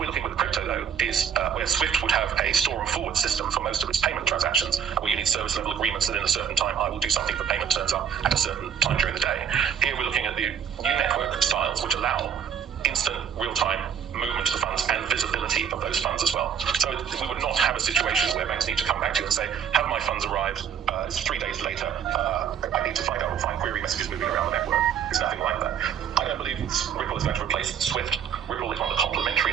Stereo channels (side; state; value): left; quieter; 8.2 dB